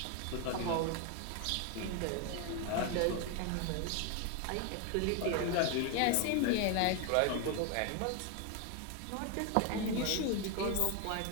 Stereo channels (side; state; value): both; different; correlation 0.01